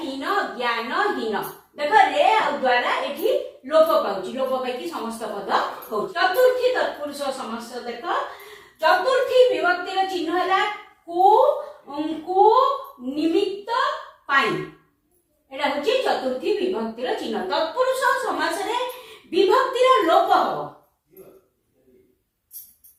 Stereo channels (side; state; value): both; identical; correlation 1.00